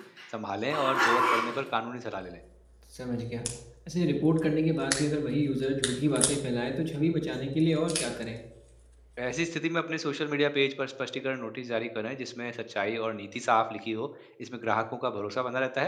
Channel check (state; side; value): identical; both; correlation 1.00